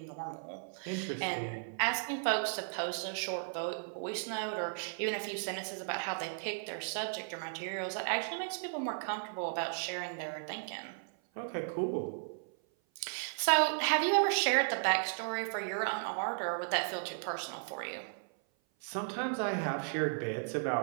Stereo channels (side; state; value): left; silent; 54 dB below the other